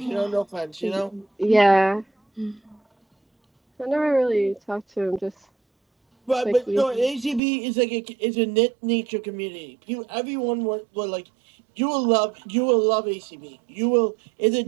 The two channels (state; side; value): drops out; left; at 7.4 s